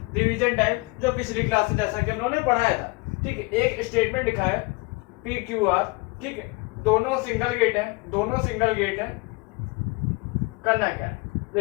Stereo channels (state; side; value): quieter; right; 26.2 dB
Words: रिवीजन टाइप जो पिछली क्लास में जैसा कि हम लोगों ने पढ़ाया था। ठीक है, एक स्टेटमेंट लिखा है पी क्यू आर, ठीक है, दोनों सिंगल गेट है। करना क्या है,